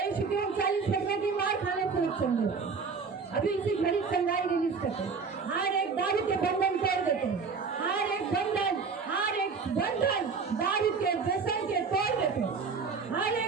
के 39 लगने की मार खाने से रक्षण देते. अभी इसी घड़ी चंगाई रिलीज करते हैं. हर एक दारू के बंधन तोड़ देते हैं. हर एक बंधन, हर एक बंधन दारू के व्यसन के तोड़ देते हैं. हर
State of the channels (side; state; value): left; quieter; 5.1 dB